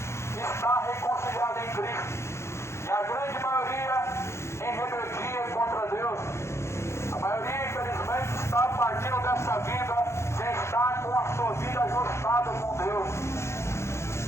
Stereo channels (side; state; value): right; late; 0.13 ms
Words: dessa vida sem estar com a sua vida ajustada com Deus.